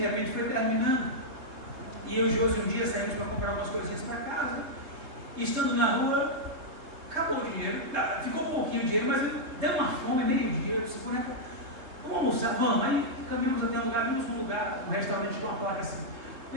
repente foi terminando. E eu e o Josi um dia saímos para comprar algumas coisinhas para casa. E estando na rua, acabou o dinheiro. Ficou um pouquinho de dinheiro, mas deu uma fome, meio-dia. Eu disse, vamos almoçar, vamos. Aí caminhamos até um lugar, vimos um lugar, um restaurante com uma placa assim,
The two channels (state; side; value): late; left; 3.3 ms